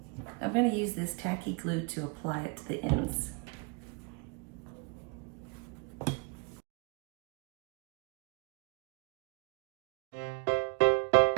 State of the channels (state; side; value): quieter; left; 31.4 dB